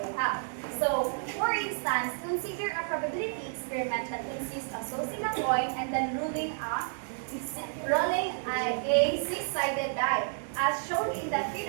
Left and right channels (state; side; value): silent; left; digital silence